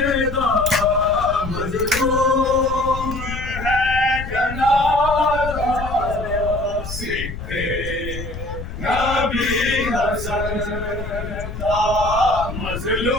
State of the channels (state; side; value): noise; left; rumble, 8 dB below the sound